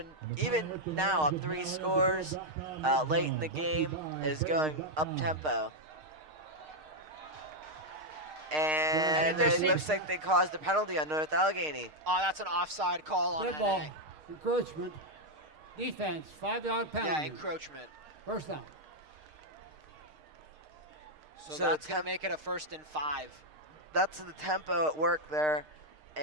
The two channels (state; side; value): late; left; 6.5 ms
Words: even now up 3 scores late in the game, is going up-tempo. And it looks like they caused a penalty on North Allegheny. Oh, that's an offside call on Good ball. NA. Encroachment. Defense. 5-yard penalty. Yeah, encroachment. First down. So that's going to make it a 1st and 5. That's the tempo at work there.